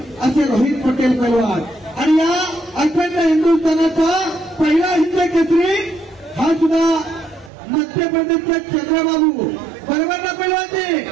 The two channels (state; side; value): drops out; left; at 7.5 s